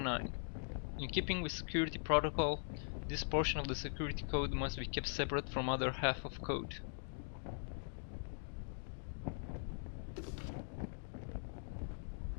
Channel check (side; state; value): right; silent; digital silence